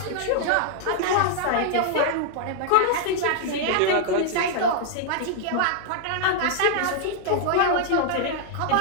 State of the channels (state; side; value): different; both; correlation -0.01